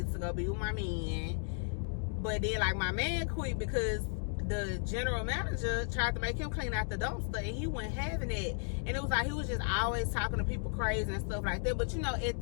to go be with my man. But then like my man quit because the general manager tried to make him clean out the dumpster, and he wasn't having it. And it was like he was just always talking to people crazy and stuff like that. But you know, at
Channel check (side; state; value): right; silent; 55 dB below the other